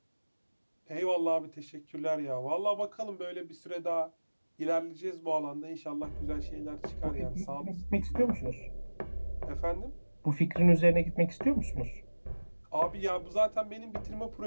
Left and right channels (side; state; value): both; inverted; correlation -1.00